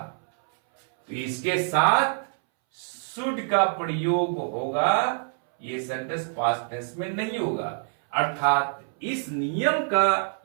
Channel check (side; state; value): left; silent; 61 dB below the other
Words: तो इसके साथ शुड का प्रयोग होगा, ये सेंटेंस पास्ट टेंस में नहीं होगा। अर्थात इस नियम का